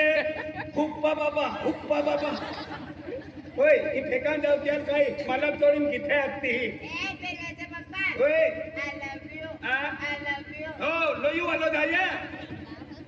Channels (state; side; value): identical; both; correlation 1.00